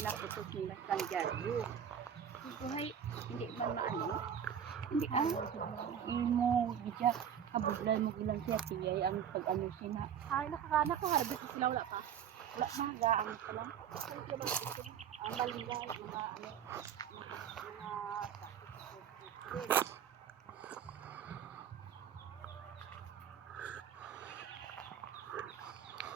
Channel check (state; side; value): quieter; left; 8.6 dB